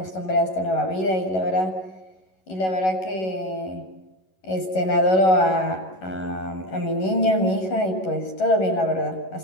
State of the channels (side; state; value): right; late; 11 ms